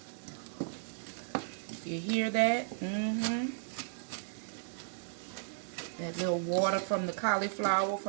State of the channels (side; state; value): left; silent; digital silence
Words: You hear that? That little water from the cauliflower,